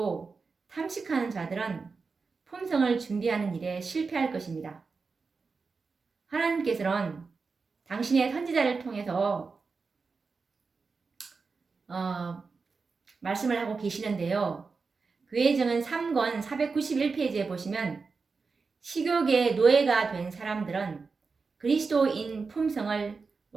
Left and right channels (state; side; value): quieter; left; 4.6 dB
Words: 탐식하는 자들은 품성을 준비하는 일에 실패할 것입니다. 하나님께서는 당신의 선지자를 통해서 말씀을 하고 계시는데요. 교회정은 3권 491페이지에 보시면 식욕의 노예가 된 사람들은 그리스도인 품성을